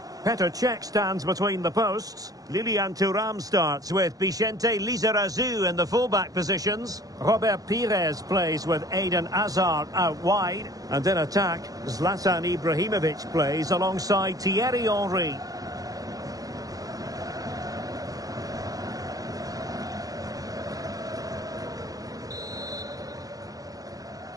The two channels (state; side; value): late; left; 0.17 ms